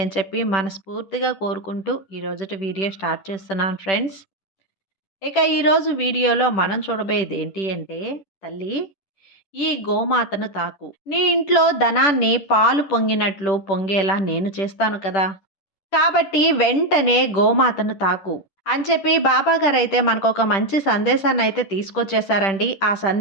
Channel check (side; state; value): right; late; 10 ms